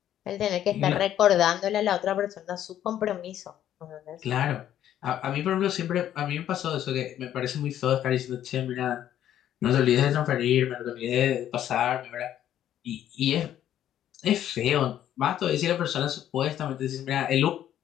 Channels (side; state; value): right; quieter; 11.3 dB